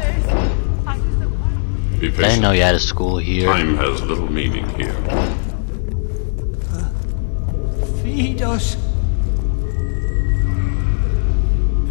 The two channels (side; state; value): right; silent; digital silence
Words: I patient. didn't know you had a school here. Time has little meaning here. Feed us.